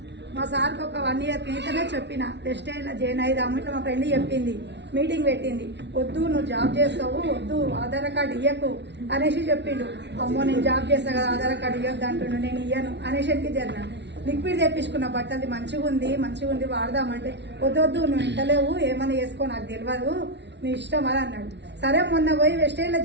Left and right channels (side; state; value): left; late; 0.50 ms